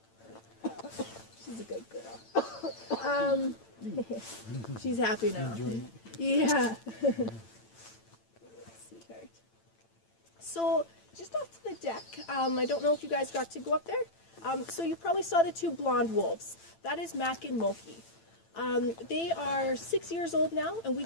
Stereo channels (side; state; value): right; late; 8.9 ms